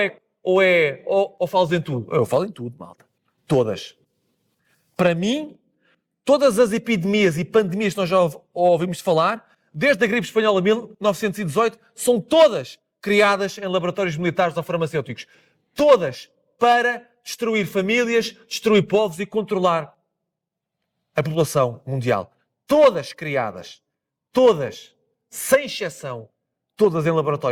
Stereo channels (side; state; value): both; identical; correlation 1.00